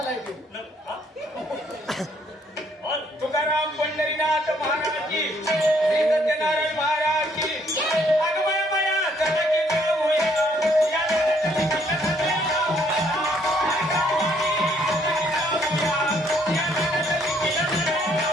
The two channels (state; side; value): normal; both; correlation 0.67